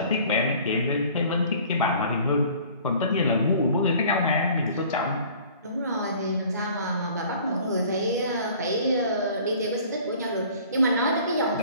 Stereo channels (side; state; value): both; inverted; correlation -0.50